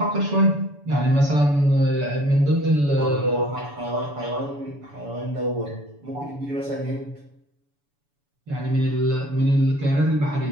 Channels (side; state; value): left; late; 7.0 ms